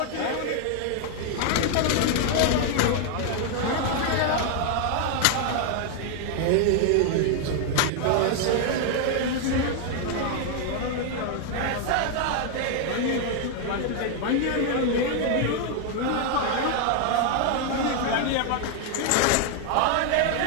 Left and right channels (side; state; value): both; different; correlation 0.00